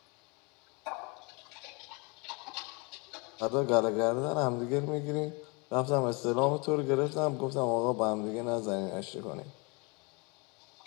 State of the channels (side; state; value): right; quieter; 30.1 dB